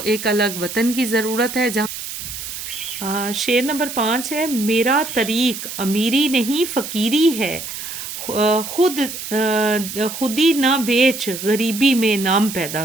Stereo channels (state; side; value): noise; right; hiss, 8 dB below the sound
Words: ایک الگ وطن کی ضرورت ہے. جہاں شعر نمبر 5 ہے میرا طریق امیری نہیں فقیری ہے، خودی نہ بیچ غریبی میں نام پیدا